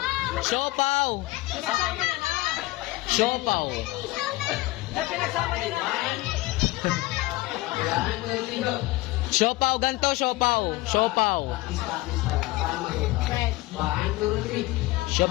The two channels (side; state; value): right; quieter; 19.4 dB